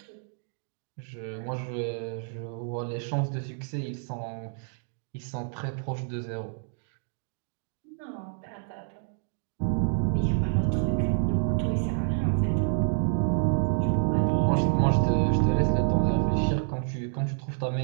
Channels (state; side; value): silent; left; 59 dB below the other